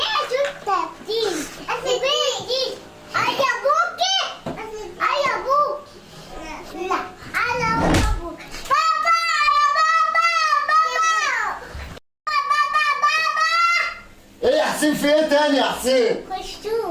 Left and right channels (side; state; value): both; identical; correlation 1.00